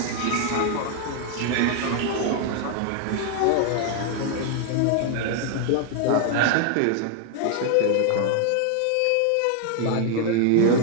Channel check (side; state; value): both; different; correlation 0.00